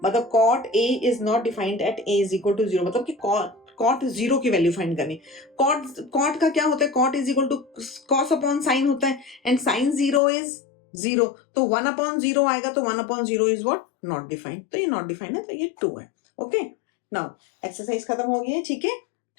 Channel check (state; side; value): drops out; right; at 10.2 s